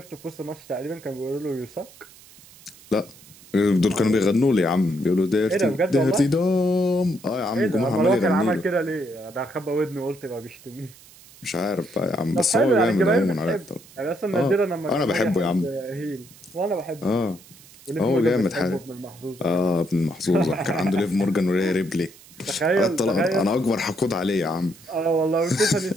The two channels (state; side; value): noise; right; hiss, 23 dB below the sound